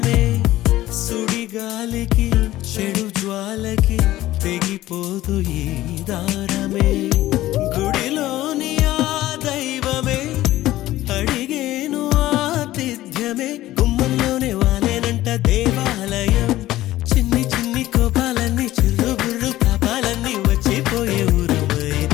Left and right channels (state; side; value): quieter; right; 15.5 dB